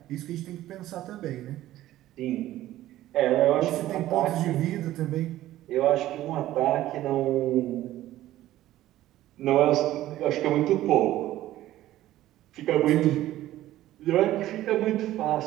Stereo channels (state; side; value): quieter; left; 14.5 dB